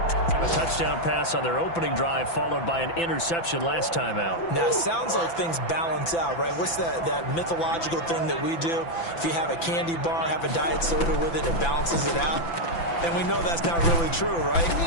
touchdown pass on their opening drive, followed by an interception last time out. Now, it sounds like things balance out, right? What's that mythological thing that we do? If you have a candy bar, have a diet soda with it, it balances it out. And we know that's not really true, right?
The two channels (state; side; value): late; right; 5.9 ms